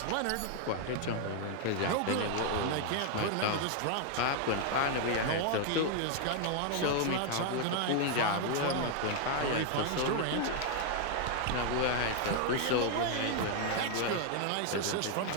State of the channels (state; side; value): different; both; correlation 0.00